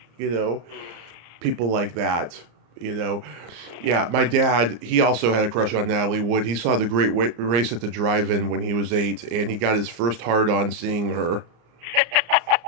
know, people like that. You know, yeah, my dad, he also had a crush on Natalie Wood. He saw the Great Race at the drive-in when he was 8, and he got his first hard-on seeing her.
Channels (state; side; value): late; left; 34 ms